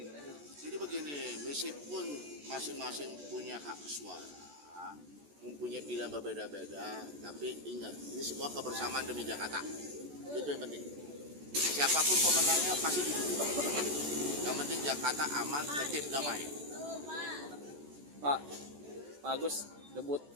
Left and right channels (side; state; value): left; late; 14 ms